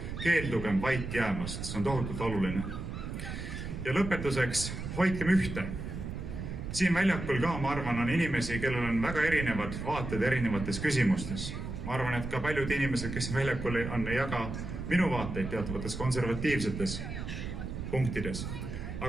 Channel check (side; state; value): right; noise; rumble, 6 dB below the sound